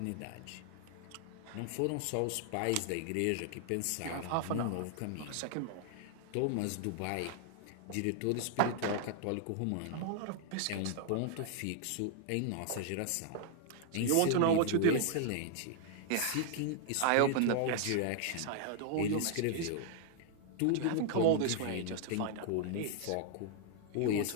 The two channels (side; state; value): both; different; correlation 0.00